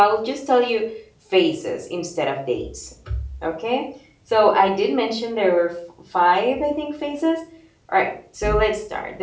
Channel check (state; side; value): identical; both; correlation 1.00